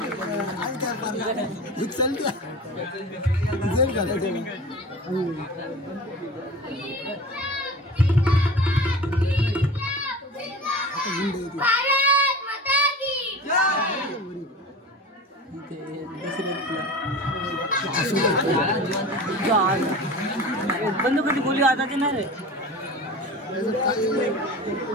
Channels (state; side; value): normal; both; correlation 0.35